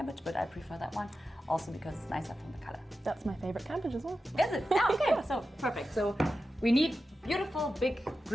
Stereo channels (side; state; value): both; normal; correlation 0.92